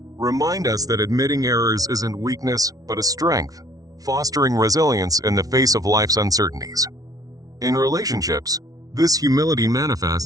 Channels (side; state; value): left; late; 0.18 ms